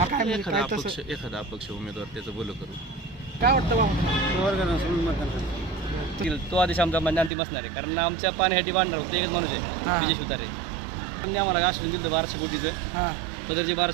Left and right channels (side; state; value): left; drops out; at 7.3 s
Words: म्हणजे एखादा काय तसं एखादा अपक्ष उमेदवार त्याचं बोल करू. काय वाटतं बाबा तुम्हाला? तो आदेश आमचा म्हणजे अंतिम असणार आहे, कारण आमच्या पाण्यासाठी भांडणार होतं एकच माणूस हा. आहे विजय शिवतारे. पण आम्हाला आश्वासन दिलं 1200 कोटीचं, हां पदरचे